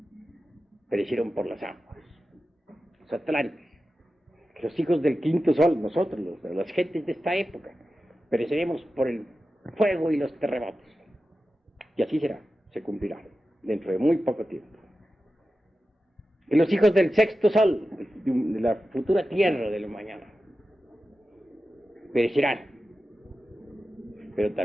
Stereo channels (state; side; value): normal; both; correlation 0.93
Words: perecieron por las aguas. Los atlantes, que los hijos del quinto sol, nosotros, las gentes de esta época, pereceremos por el fuego y los terremotos. Y así será, se cumplirá, dentro de muy poco tiempo. Y los hijos del sexto sol, de la futura tierra de la mañana, perecerán. Pero